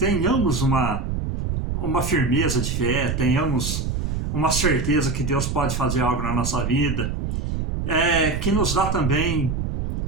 uma firmeza de fé, tenhamos uma certeza que Deus pode fazer algo na nossa vida, que nos dá também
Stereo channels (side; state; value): right; noise; rumble, 2 dB below the sound